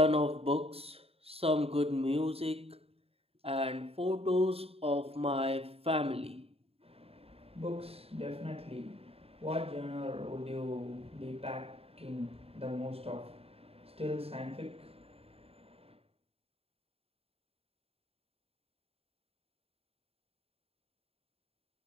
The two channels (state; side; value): late; left; 0.28 ms